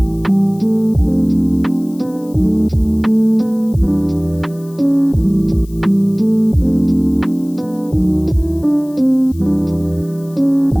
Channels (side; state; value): left; noise; hiss, 26 dB below the sound